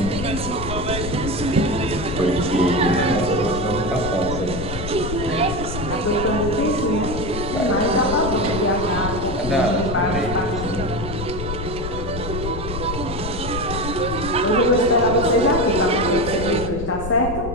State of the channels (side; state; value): left; noise; rumble, 7 dB below the sound